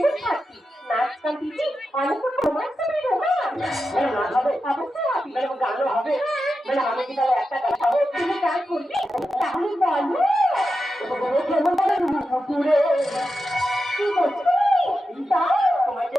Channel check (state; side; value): normal; both; correlation 0.90